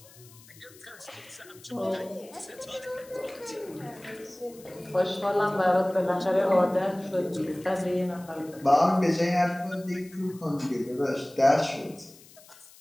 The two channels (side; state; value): left; noise; hiss, 23 dB below the sound